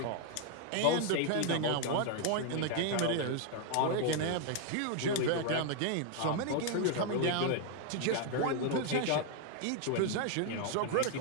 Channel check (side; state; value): both; different; correlation 0.00